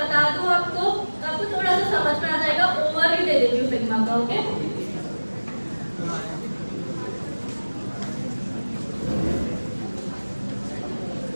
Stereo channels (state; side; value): inverted; both; correlation -1.00